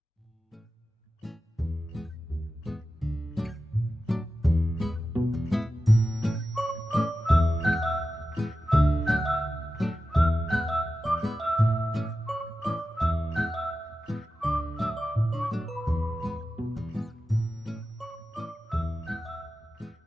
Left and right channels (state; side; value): normal; both; correlation 0.92